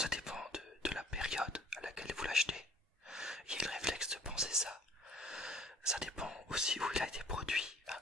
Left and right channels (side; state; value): both; normal; correlation 0.54